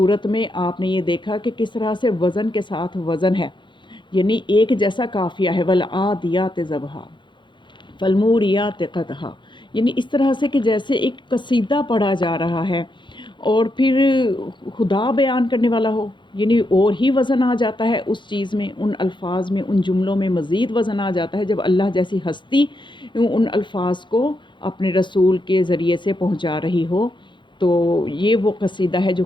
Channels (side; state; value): right; late; 0.23 ms